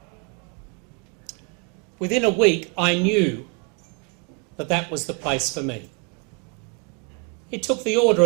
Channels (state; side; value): quieter; left; 32.3 dB